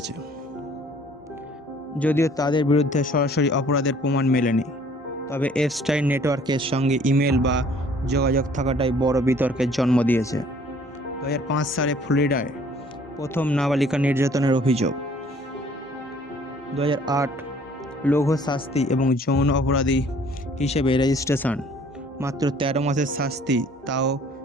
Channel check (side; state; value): both; normal; correlation 0.56